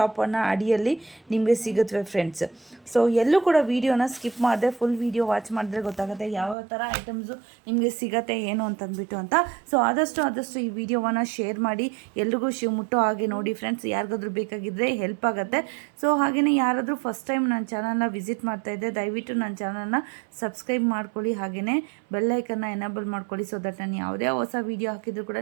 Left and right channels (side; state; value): left; drops out; at 6.6 s